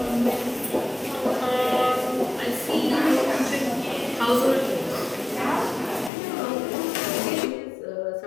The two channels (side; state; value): right; drops out; at 6.1 s